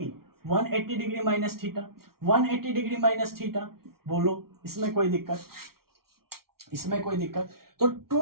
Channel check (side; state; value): left; late; 0.94 ms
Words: 180 degree minus theta, 180 degree minus theta. बोलो इसमें कोई दिक्कत, इसमें कोई दिक्कत। तो